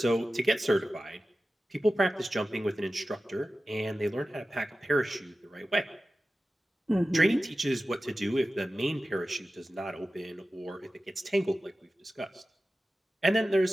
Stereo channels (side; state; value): both; normal; correlation 0.94